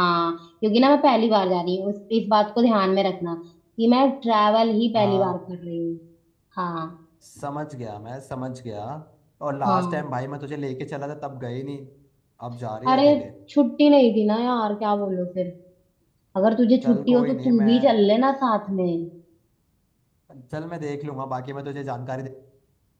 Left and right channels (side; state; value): both; identical; correlation 1.00